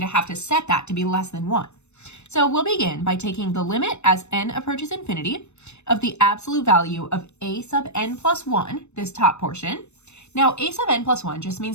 to have to set that to be less than 1. So we'll begin by taking the limit as n approaches infinity of the absolute value of a sub n plus 1, this top portion. Now, a sub n plus 1 just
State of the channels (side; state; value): right; late; 0.82 ms